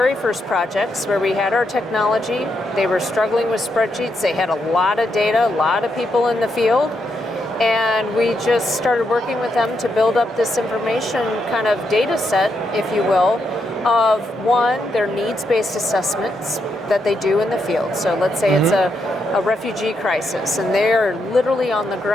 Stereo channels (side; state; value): both; normal; correlation 0.81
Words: first projects where we had our technology. They were struggling with spreadsheets. They had a lot of data, a lot of people in the field. And we just started working with them to build up this information kind of data set, if you will, of one, their needs-based assessments that they do in the field. So let's say it's a refugee crisis, and they're literally on the